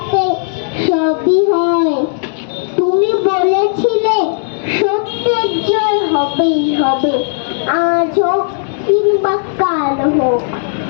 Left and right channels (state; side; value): silent; right; digital silence